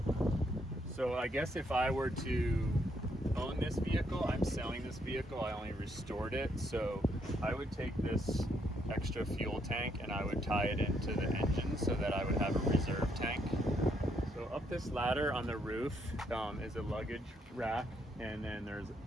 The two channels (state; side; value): normal; both; correlation 0.74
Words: So I guess if I were to own this vehicle, I'm selling this vehicle, I only restored it, so I would take this extra fuel tank and I would tie it into the engine so that I would have a reserve tank. So up this ladder on the roof is a luggage rack, and then there's